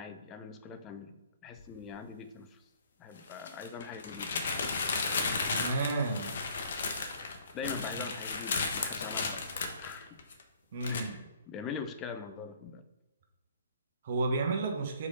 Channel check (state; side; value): inverted; both; correlation -0.58